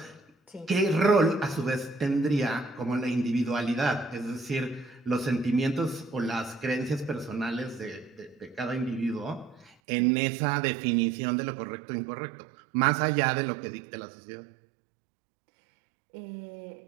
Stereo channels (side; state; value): left; drops out; at 9.8 s